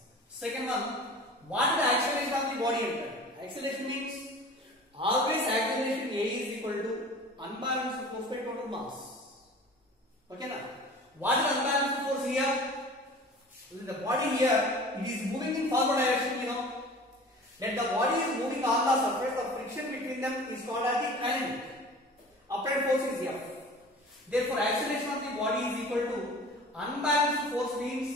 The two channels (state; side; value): normal; both; correlation 0.41